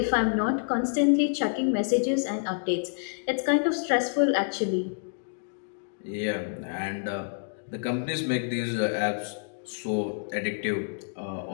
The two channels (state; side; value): silent; right; digital silence